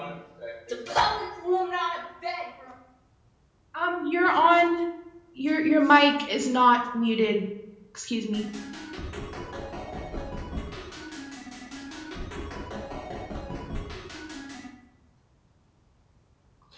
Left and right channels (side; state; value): both; identical; correlation 1.00